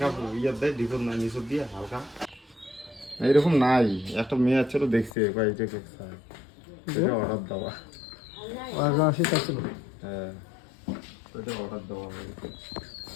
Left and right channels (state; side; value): drops out; right; at 5.2 s